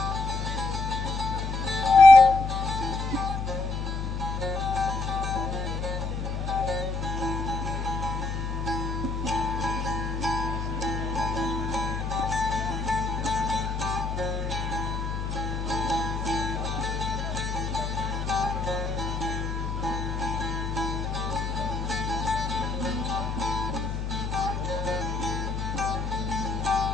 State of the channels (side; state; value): left; noise; hum, 3 dB below the sound